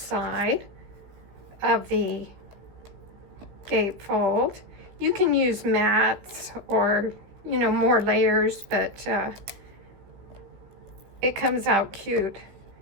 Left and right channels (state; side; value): late; left; 16 ms